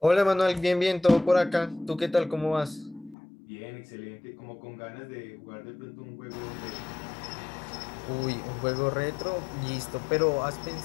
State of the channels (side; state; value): right; drops out; at 3.2 s